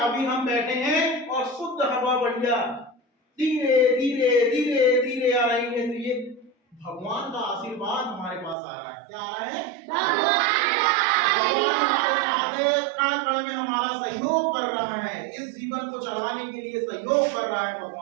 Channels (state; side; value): drops out; left; at 8.6 s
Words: अभी हम बैठे हैं और शुद्ध हवा बढ़िया धीरे धीरे धीरे धीरे आ रही है, तो ये भगवान का आशीर्वाद हमारे पास आ रहा है। क्या आ रहा है, भगवान हमारे साथ है, कण कण में हमारा सहयोग कर रहा है, इस जीवन को चलाने के लिए सहयोग कर रहा है